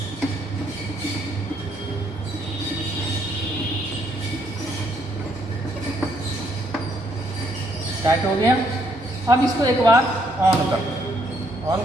टाइट हो गया। अब इसको एक बार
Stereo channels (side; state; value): both; normal; correlation 0.70